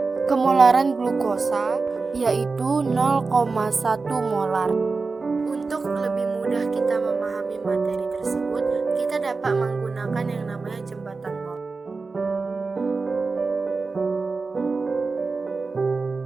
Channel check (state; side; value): quieter; left; 4.1 dB